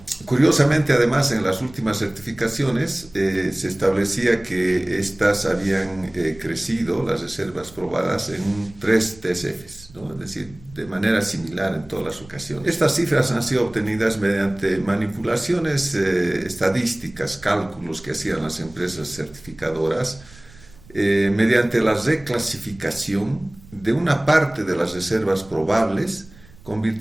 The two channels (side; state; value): right; noise; rumble, 22 dB below the sound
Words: Curiosamente, además, en las últimas certificaciones se establecía que estas habían crecido, las reservas probadas, en 3 TCFs, ¿no? Es decir, de manera similar en todas las ocasiones. Estas cifras han sido obtenidas mediante manipulaciones estadísticas, cálculos que hacían las empresas certificadoras, mediante la reclasificación de una parte de las reservas probables,